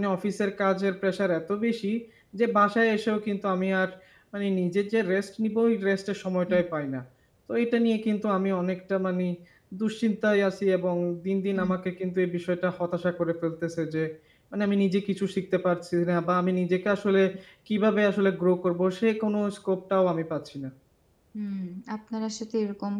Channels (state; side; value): identical; both; correlation 1.00